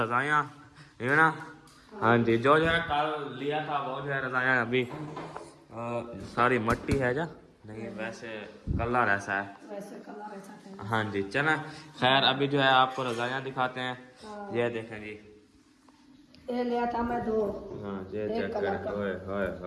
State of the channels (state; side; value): identical; both; correlation 1.00